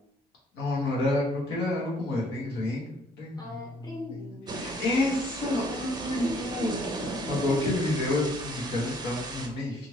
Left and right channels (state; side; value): normal; both; correlation 0.62